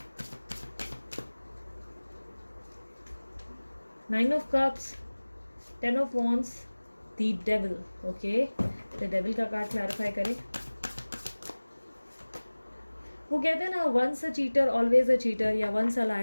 9 of cups, 10 of wands, the devil. Okay, the devil का कार्ड क्लैरिफाई करें। वो कहते हैं ना, once a cheater always a cheater, या once a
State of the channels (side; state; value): both; inverted; correlation -1.00